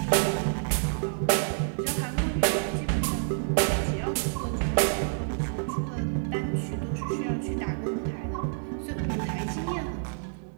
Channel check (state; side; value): silent; left; digital silence